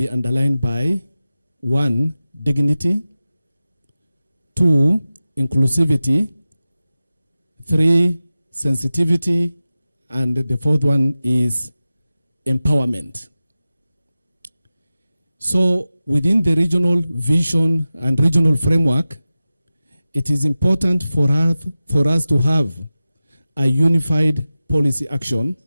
underlined by 1, dignity, 2, inclusivity, 3, sensitivity, and the 4th one is empowerment. So within the regional vision and regional framework, it is important for us to have a unified policy action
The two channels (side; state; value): both; inverted; correlation -0.94